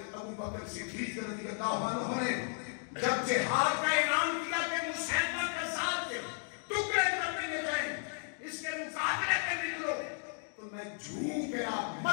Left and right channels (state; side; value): silent; right; 55 dB below the other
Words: ابو بکر صدیق رضی اللہ عنہ نے جب جہاد کا اعلان کیا کہ مسلمہ کذاب کے ٹکڑے کر دیے جائیں، اس کے مقابلے میں نکلو، تو میں جھوم گیا،